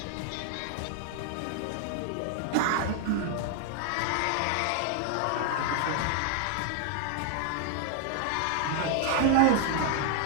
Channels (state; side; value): different; both; correlation 0.00